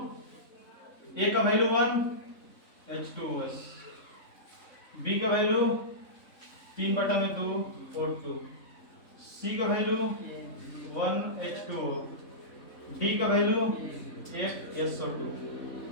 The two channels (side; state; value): right; late; 3.6 ms